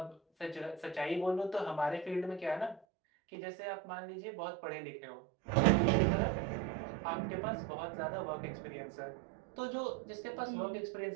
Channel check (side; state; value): left; drops out; at 2.8 s